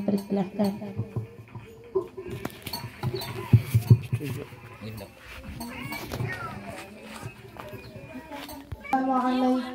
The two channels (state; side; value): identical; both; correlation 1.00